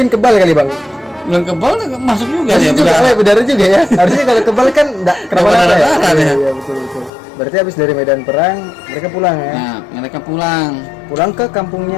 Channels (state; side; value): drops out; right; at 7.1 s